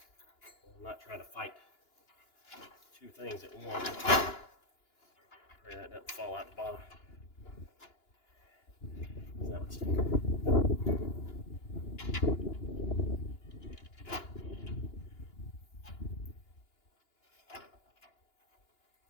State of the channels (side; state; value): right; late; 2.9 ms